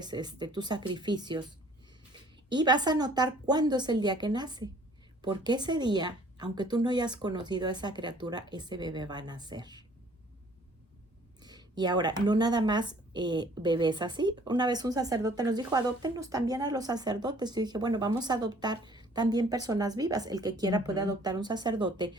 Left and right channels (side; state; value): both; normal; correlation 0.56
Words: tus sacrificios. Y vas a notar cuándo es el día que nace, porque ese día, aunque tú no hayas conocido a esa criatura, ese bebé va a nacer. Y ahora, no nada más bebés así. Una vez un sacerdote nos dijo, adóptenos también a los sacerdotes. Yo dije, bueno, vamos a adoptar también personas vivas. El que quiera puede adoptar un sacerdote,